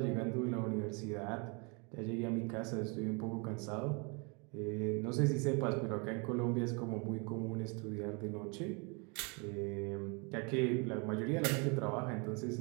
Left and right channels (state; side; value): quieter; left; 32.3 dB